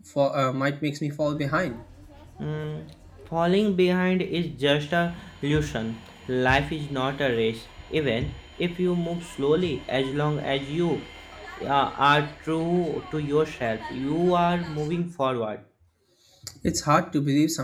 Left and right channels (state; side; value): identical; both; correlation 1.00